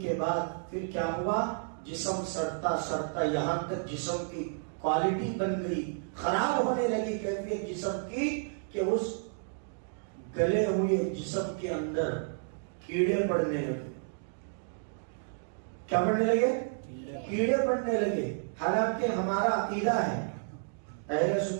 کے بعد پھر کیا ہوا، جسم سڑتا سڑتا یہاں تک جسم کی کوالٹی بن گئی، خراب ہونے لگی کیفیت جسم کی، کہ اس گلے ہوئے جسم کے اندر کیڑے پڑنے لگے۔ کیا پڑنے لگے؟ کیڑے پڑنے لگے۔ حالانکہ ہمارا عقیدہ ہے، اہل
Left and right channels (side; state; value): left; silent; digital silence